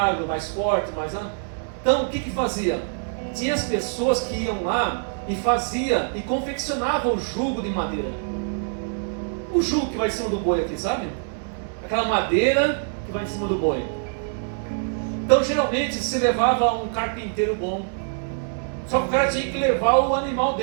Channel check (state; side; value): silent; left; digital silence